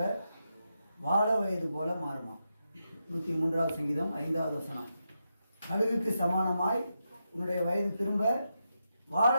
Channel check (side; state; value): both; inverted; correlation -0.86